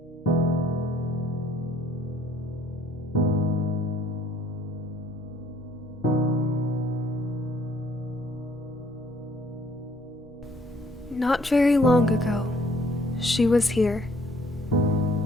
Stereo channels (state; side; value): normal; both; correlation 0.61